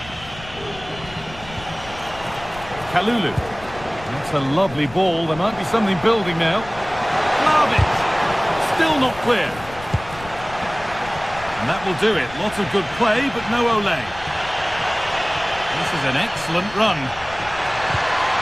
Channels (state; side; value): noise; left; rumble, 17 dB below the sound